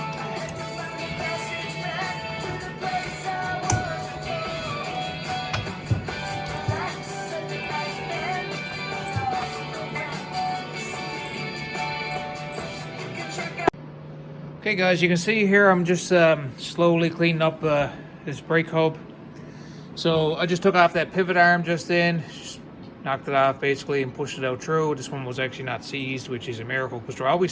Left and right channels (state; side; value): identical; both; correlation 1.00